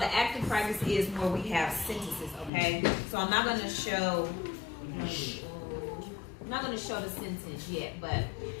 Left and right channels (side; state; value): right; drops out; at 2.5 s